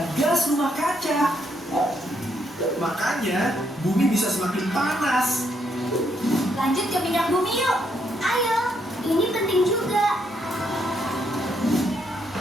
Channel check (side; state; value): both; normal; correlation 0.75